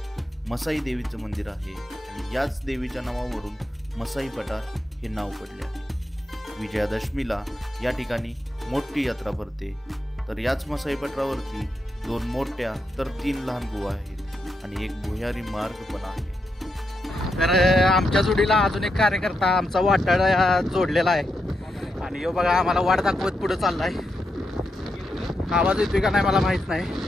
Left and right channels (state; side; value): normal; both; correlation 0.84